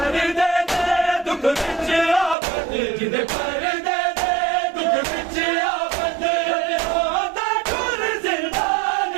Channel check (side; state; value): left; drops out; at 2.4 s